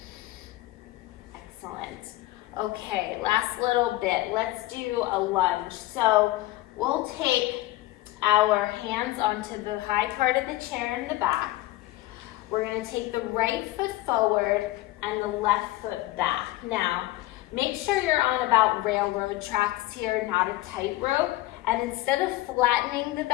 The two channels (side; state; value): right; quieter; 17.2 dB